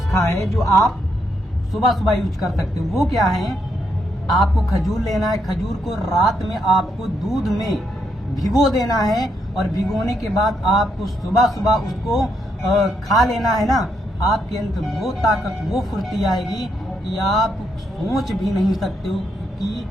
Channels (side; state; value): both; normal; correlation 0.78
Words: है जो आप सुबह सुबह यूज कर सकते हो। वो क्या है, आपको खजूर लेना है। खजूर को रात में आपको दूध में भिगो देना है और भिगोने के बाद आपको सुबह सुबह उसको खा लेना है ना। आपके अंदर वो ताकत, वो फुर्ती आएगी कि आप सोच भी नहीं सकते हो कि